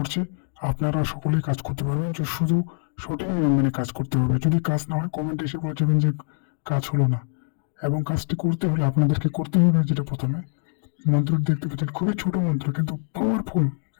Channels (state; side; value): silent; right; digital silence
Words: আপনারা সকলেই কাজ করতে পারবেন, যে শুধু সঠিক নিয়ম মেনে কাজ করতে হবে। যদি কাজ না হয় কমেন্টে এসে বলে যাবেন যে কাজ হলো না। এবং কাজটি করতে হলে আপনাদেরকে করতে হবে যেটা প্রথমে মন্ত্রটি দেখতে পাচ্ছেন, খুবই ছোট মন্ত্র কিন্তু পাওয়ারফুল।